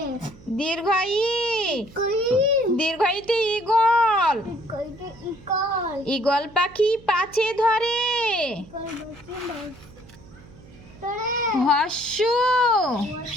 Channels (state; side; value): noise; right; hum, 22 dB below the sound